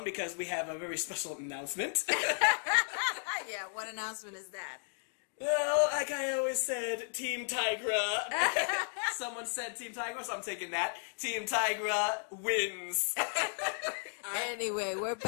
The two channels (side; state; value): right; silent; digital silence